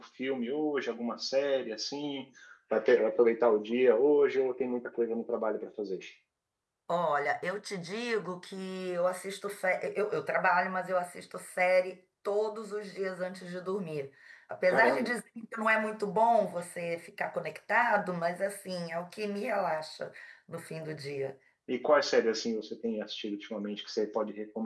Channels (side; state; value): both; identical; correlation 1.00